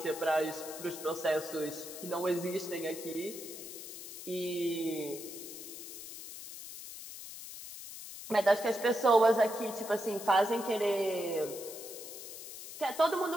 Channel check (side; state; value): left; noise; hiss, 11 dB below the sound